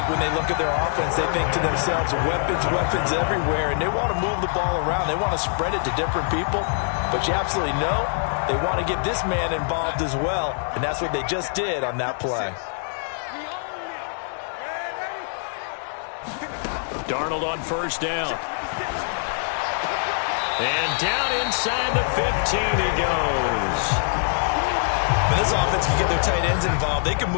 when they look at their offense, they think to themselves, weapons everywhere, and they want to move the ball around. They want to spread it to different people. But you absolutely know they want to get this man involved as well, and that's what they just did on that play. Darnold on first down. And down inside the 15 he goes. When this offense can get their tight ends involved, they can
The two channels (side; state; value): right; silent; digital silence